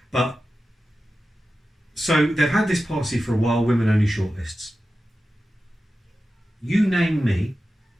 But, so they've had this policy for a while, women-only shortlists. You name me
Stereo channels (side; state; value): both; normal; correlation 0.93